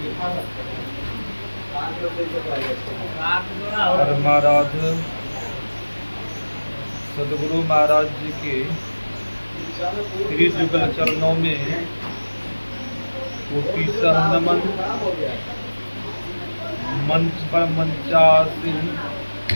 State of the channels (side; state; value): both; inverted; correlation -1.00